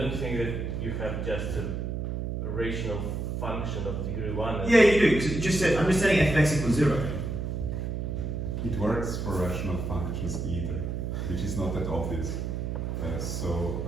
think that you have just a rational function of degree 1. Yeah, you do. So just set, I'm just setting f of x equals 0. It works for rational functions either, which is not that obvious.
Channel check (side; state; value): right; noise; hum, 3 dB below the sound